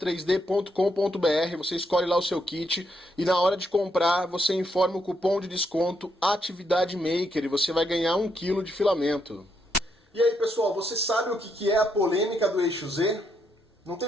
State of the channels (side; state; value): both; normal; correlation 0.77